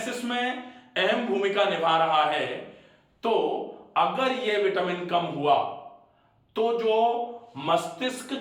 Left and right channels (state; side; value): identical; both; correlation 1.00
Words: में अहम भूमिका निभा रहा है तो अगर ये विटामिन कम हुआ तो जो मस्तिष्क